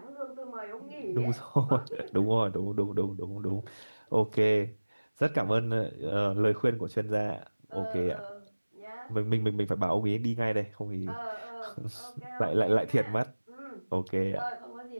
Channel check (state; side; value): inverted; both; correlation -1.00